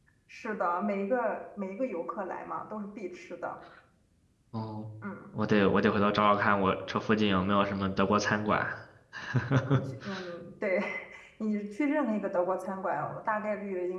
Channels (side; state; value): both; identical; correlation 1.00